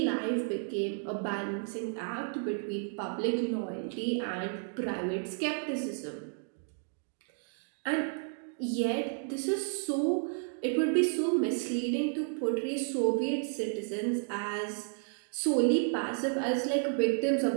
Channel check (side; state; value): left; silent; 56 dB below the other